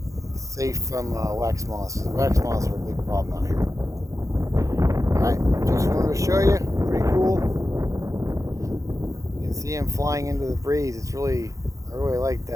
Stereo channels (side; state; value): left; late; 0.16 ms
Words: safe from wax moths. Wax moths are a big problem out here. Alright, just wanted to show you. Pretty cool. You can see them flying into the breeze. I really like